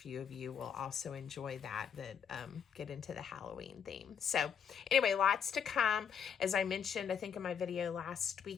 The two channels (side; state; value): right; quieter; 7.6 dB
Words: of you will also enjoy that get into the Halloween theme. So anyway, lots to come. As I mentioned, I think in my video last